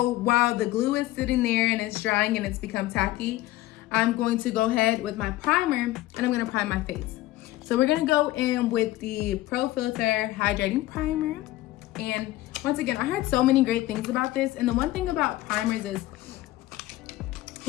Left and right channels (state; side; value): quieter; right; 16.7 dB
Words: while the glue is sitting there and it's drying and it's become tacky, I'm going to go ahead with my primer and I'm gonna prime my face. So we're gonna go in with the Pro Filter Hydrating Primer. And once again, I heard so many great things about this. And the one thing about primers is